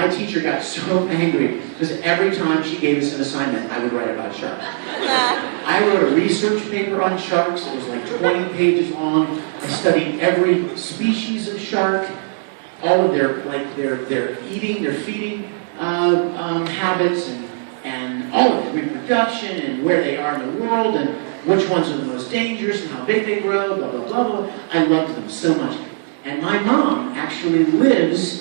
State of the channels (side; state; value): left; silent; digital silence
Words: teacher got so angry because every time she gave us an assignment, I would write about sharks. I wrote a research paper on sharks. It was like 20 pages long. I studied every species of shark, all of their eating, their feeding habits, and all of it, reproduction, and where they are in the world, and which ones are the most dangerous, and how big they grow, blah, blah, blah, blah. I loved them so much. And my mom actually